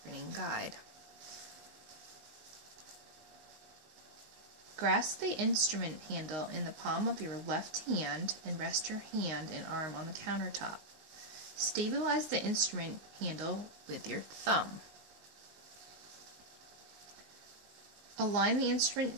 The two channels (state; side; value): late; left; 19 ms